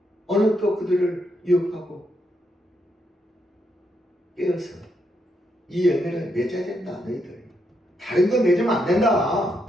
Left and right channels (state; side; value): normal; both; correlation 0.79